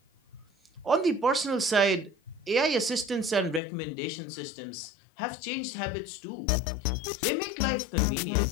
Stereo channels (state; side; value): drops out; right; at 3.6 s